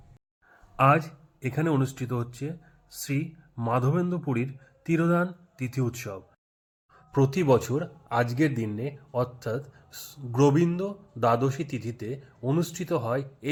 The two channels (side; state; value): both; identical; correlation 1.00